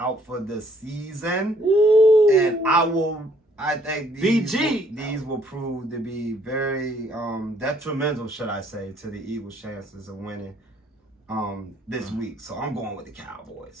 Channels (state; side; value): normal; both; correlation 0.64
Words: for the season. Ooh. And I think these will prove to be very detrimental, should I say, to the Eagles' chances of winning this week. So I'm going with the